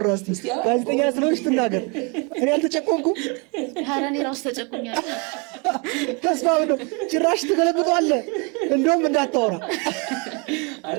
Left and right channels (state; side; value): quieter; left; 31.9 dB